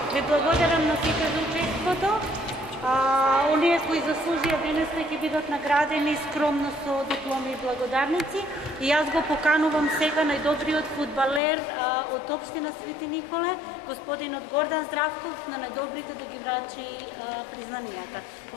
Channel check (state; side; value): drops out; right; at 11.4 s